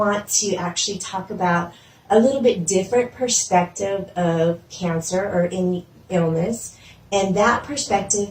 to actually talk about a little bit different perspective of cancer or any illness. And that perspective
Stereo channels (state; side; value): identical; both; correlation 1.00